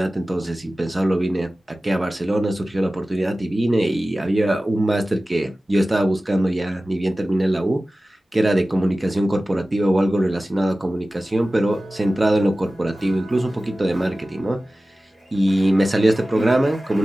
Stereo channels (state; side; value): normal; both; correlation 0.96